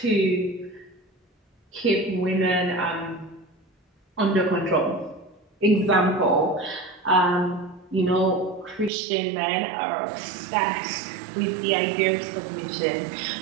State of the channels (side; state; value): left; drops out; at 8.9 s